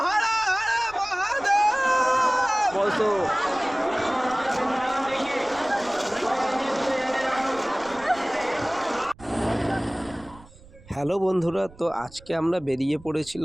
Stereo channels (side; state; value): right; noise; rumble, 23 dB below the sound